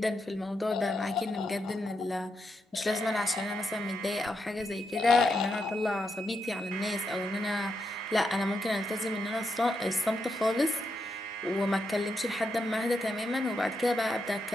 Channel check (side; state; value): both; normal; correlation 0.83